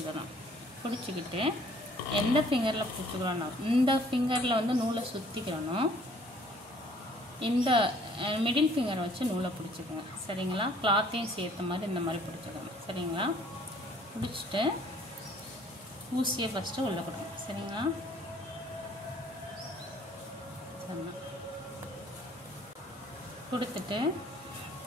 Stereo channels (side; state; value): both; normal; correlation 0.58